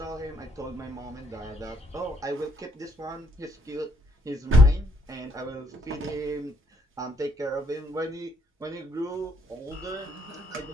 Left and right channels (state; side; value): normal; both; correlation 0.69